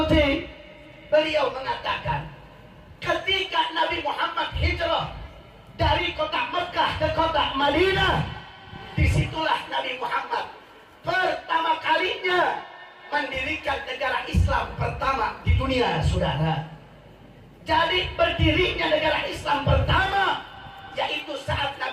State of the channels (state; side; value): identical; both; correlation 1.00